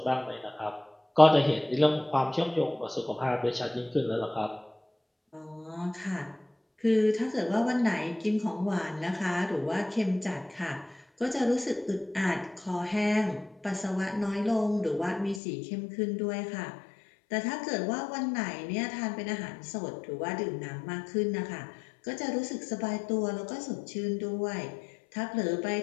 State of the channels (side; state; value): right; drops out; at 15.4 s